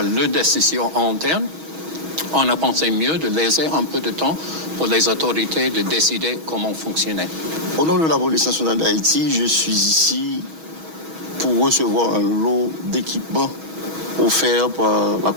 leurs décisions internes, on a pensé mieux de laisser un peu de temps pour les autorités de décider comment fonctionner. Au nom de la police nationale d'Haïti, je suis ici pour recevoir un lot d'équipements offerts par la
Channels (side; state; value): left; late; 6.2 ms